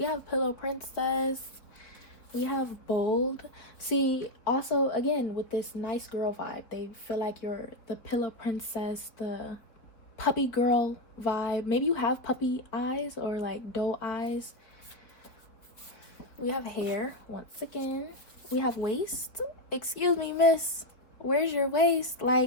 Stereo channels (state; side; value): late; right; 3.8 ms